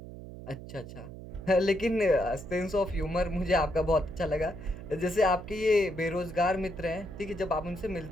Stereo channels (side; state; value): right; noise; hum, 13 dB below the sound